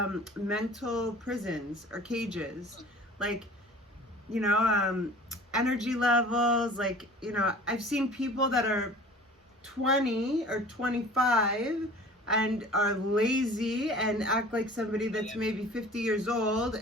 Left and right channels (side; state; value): both; normal; correlation 0.45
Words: mental prisons or cages. Like, energy levels. Like, I've seen people that are 20 or 25 and are lazy and act like somebody that's maybe 50 years old